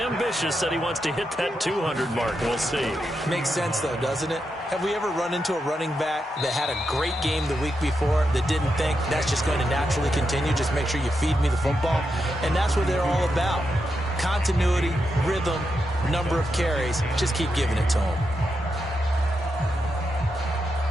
said he wants to hit that 200 mark. We'll see. Makes sense, though, doesn't it? Have we ever run into a running back that had a great game the week before that didn't think that's just going to naturally continue? Just make sure you feed me the football. And that's what they're all about. Continuity, rhythm, number of carries. Just keep giving it to them.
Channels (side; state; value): both; normal; correlation 0.85